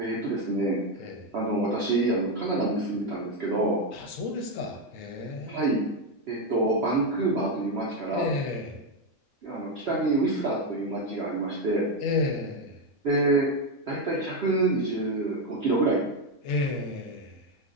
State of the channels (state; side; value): normal; both; correlation 0.07